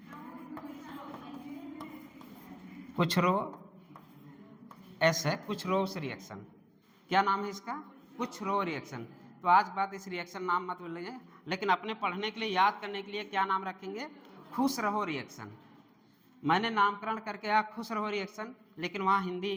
कुछ रो, एस है, कुछ रोस रिएक्शन। क्या नाम है इसका, कुछ रो रिएक्शन। तो आज बात इस रिएक्शन नाम मत बोलिए, लेकिन अपने पढ़ने के लिए, याद करने के लिए क्या नाम रखेंगे, खुश रहो रिएक्शन। मैंने नामकरण करके आया खुश रहो रिएक्शन, लेकिन वहाँ हिंदी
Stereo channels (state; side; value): identical; both; correlation 1.00